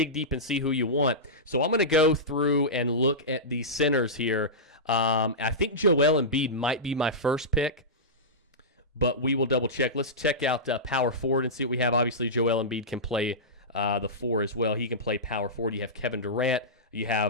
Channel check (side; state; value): both; normal; correlation -0.15